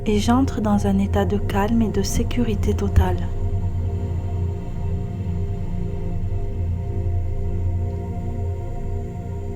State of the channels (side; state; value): both; identical; correlation 1.00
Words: et j'entre dans un état de calme et de sécurité totale.